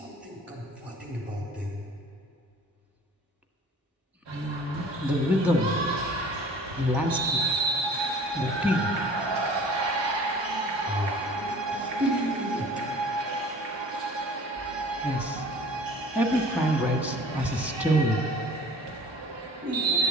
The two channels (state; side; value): normal; both; correlation 0.47